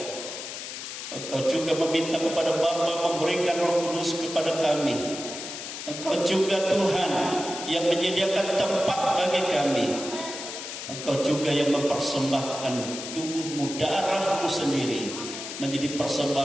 Engkau juga meminta kepada Bapa memberikan Roh Kudus kepada kami. Engkau juga Tuhan yang menyediakan tempat bagi kami. Engkau juga yang mempersembahkan tubuhmu, darahmu sendiri menjadi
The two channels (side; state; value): left; noise; hiss, 8 dB below the sound